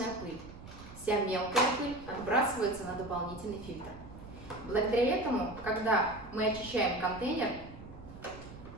пыль. Вся мелкая пыль отбрасывается на дополнительный фильтр. Благодаря этому, когда мы очищаем контейнер,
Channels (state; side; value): noise; right; rumble, 16 dB below the sound